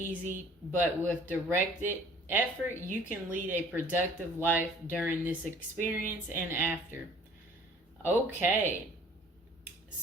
but with directed effort, you can lead a productive life during this experience and after. Okay,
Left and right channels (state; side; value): normal; both; correlation 0.53